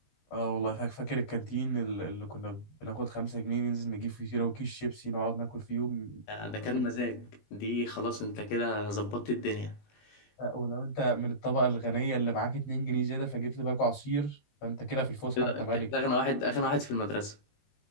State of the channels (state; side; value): late; right; 20 ms